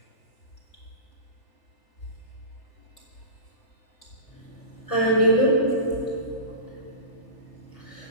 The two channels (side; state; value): right; late; 3.4 ms